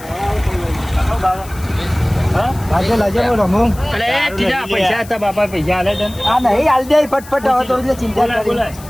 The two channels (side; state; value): left; noise; hiss, 20 dB below the sound